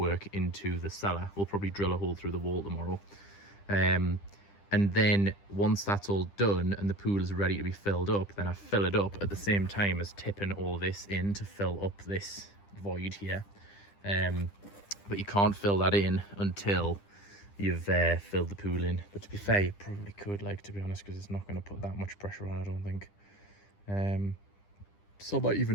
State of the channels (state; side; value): late; right; 10 ms